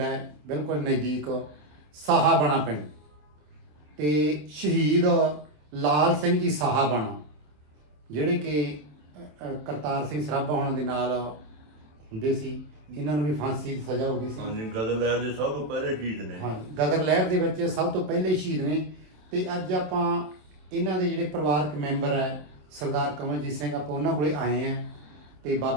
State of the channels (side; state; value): left; late; 27 ms